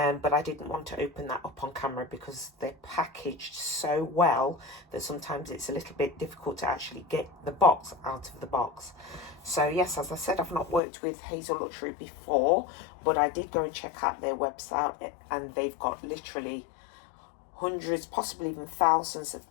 I didn't want to open that up on camera because they're packaged so well that sometimes it's a little bit difficult to actually get the box out of the box. So yes, as I said, I've not worked with Hazelluxury before, but I did go and check out their website, and they've got literally hundreds, possibly even thousands of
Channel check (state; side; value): drops out; right; at 10.8 s